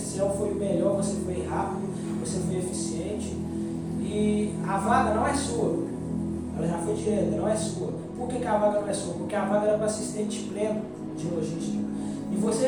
foi o melhor, você foi rápido, você foi eficiente. E a vaga não é sua. Ela já foi direta, não é sua. Por que a vaga não é sua? Porque a vaga era para assistente pleno de logística. E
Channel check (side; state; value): both; identical; correlation 1.00